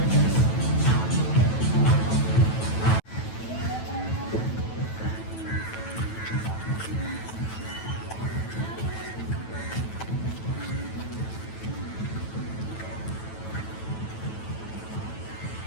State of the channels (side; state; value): right; late; 9.1 ms